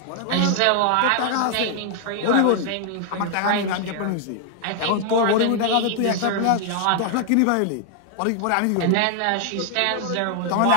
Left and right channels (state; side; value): different; both; correlation 0.00